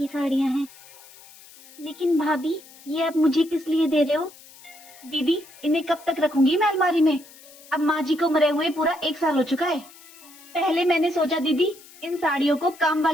साड़ियाँ हैं। लेकिन भाभी, ये आप मुझे किस लिए दे रहे हो? दीदी, इन्हें कब तक रखूंगी मैं अलमारी में? अब माँ जी को मरे हुए पूरा 1 साल हो चुका है। पहले मैंने सोचा दीदी, इन साड़ियों को काम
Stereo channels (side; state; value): left; noise; hiss, 22 dB below the sound